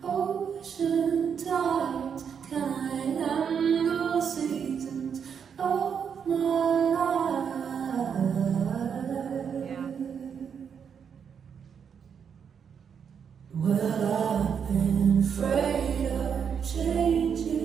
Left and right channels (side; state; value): left; quieter; 7.2 dB